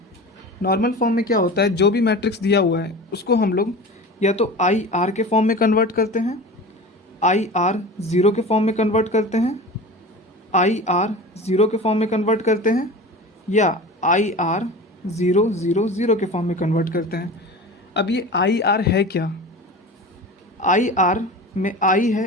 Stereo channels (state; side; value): normal; both; correlation 0.34